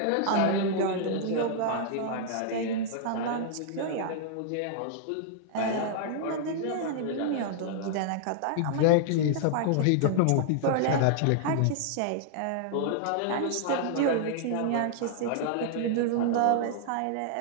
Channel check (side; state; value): both; different; correlation -0.01